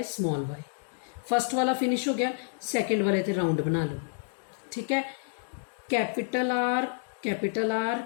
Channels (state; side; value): silent; right; digital silence